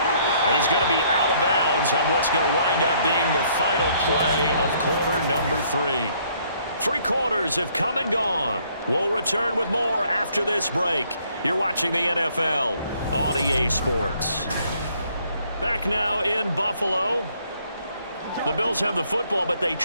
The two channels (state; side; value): inverted; both; correlation -0.65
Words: He's going to be out of bounds on what's going to wind up being the final play of quarter number 3. 3 quarters have come and gone. We'll return with more after this break. You're watching the NFL on EA Sports. Back now in Buffalo. The Bills have the football, but they